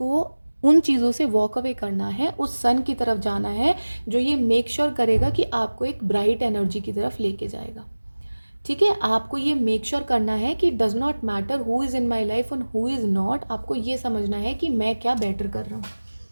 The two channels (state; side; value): inverted; both; correlation -1.00